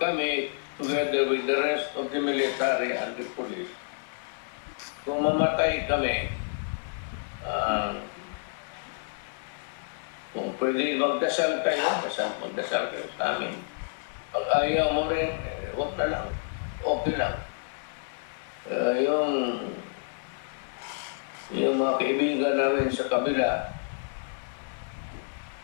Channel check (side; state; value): right; silent; 58 dB below the other